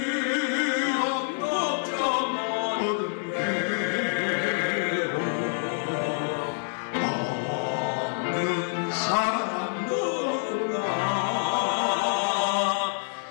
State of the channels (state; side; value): silent; right; 60 dB below the other